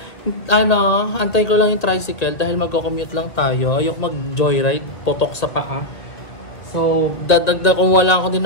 antay ko lang yung tricycle dahil magko-commute lang tayo. Ayok mag-joyride, potok sa paa. So, dadagdag kung wala ako din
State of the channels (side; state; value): right; late; 2.1 ms